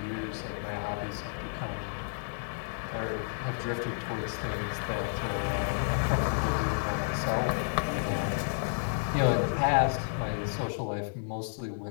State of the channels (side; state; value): right; silent; 57 dB below the other